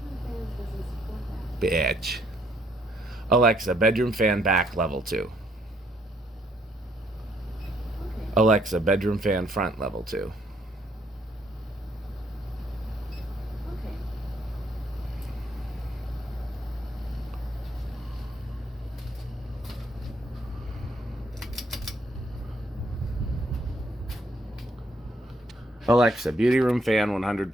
Bitch. Alexa, bedroom fan back level 2. Okay. Alexa, bedroom fan front level 2. Okay. Alexa, beauty room fan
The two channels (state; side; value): normal; both; correlation 0.69